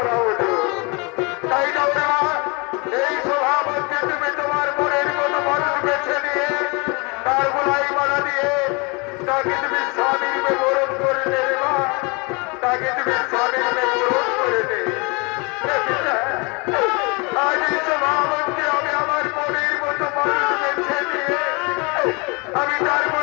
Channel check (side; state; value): right; quieter; 29.6 dB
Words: হলো। তাই না ওরে মা, এই সভা মধ্যে তুমি তোমার মনের মতো মানুষ বেছে নিয়ে তার গোলাই মালা দিয়ে তাকে তুমি স্বামীর বরণ করে নেবে মা, তাকে তুমি স্বামীর বরণ করে নেবে। আজ এই সভা মধ্যে আমি আমার মনের মতো মানুষ বেছে নিয়ে আমি তার